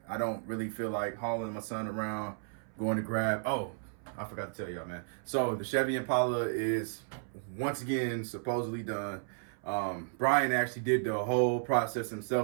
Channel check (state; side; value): silent; left; 55 dB below the other